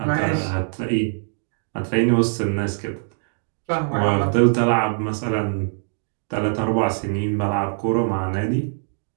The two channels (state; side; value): silent; left; digital silence